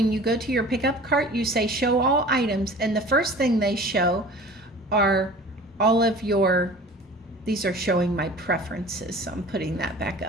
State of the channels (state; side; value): normal; both; correlation 0.43